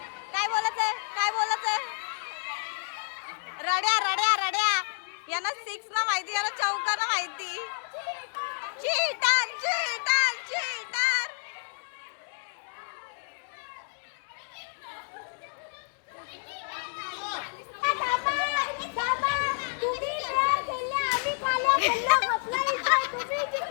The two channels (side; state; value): right; silent; 58 dB below the other